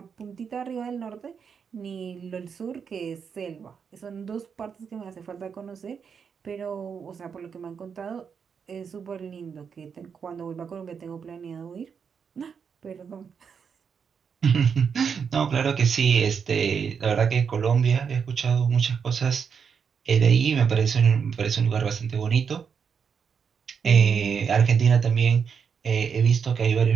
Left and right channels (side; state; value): left; quieter; 6.6 dB